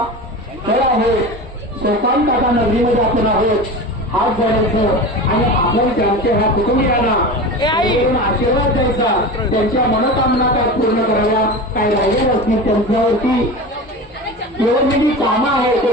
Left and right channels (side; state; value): both; normal; correlation 0.29